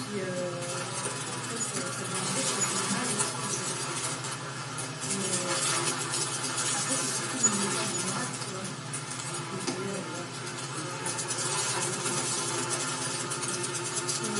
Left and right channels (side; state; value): both; identical; correlation 1.00